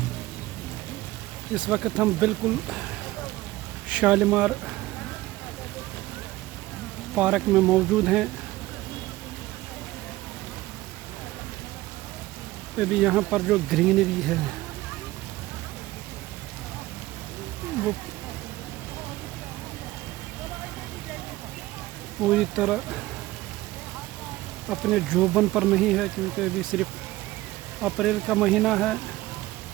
इस वक्त हम बिल्कुल शालीमार पार्क में मौजूद हैं। अभी यहाँ पर जो ग्रीनरी है वो पूरी तरह अपने जोबन पर नहीं है, क्योंकि अभी सिर्फ अप्रैल का महीना है।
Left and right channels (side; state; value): left; quieter; 17.8 dB